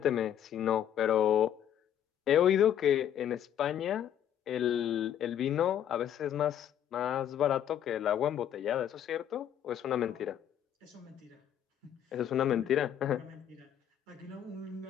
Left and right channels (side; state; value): right; quieter; 10.0 dB